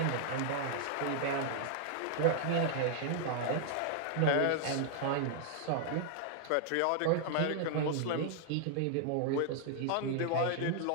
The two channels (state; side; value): different; both; correlation 0.00